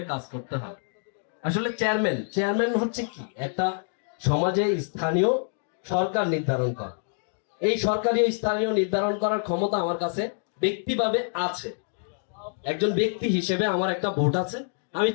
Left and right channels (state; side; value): silent; right; digital silence